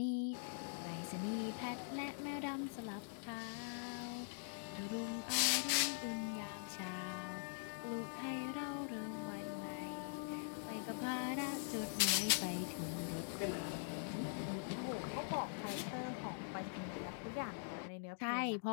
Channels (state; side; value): silent; right; digital silence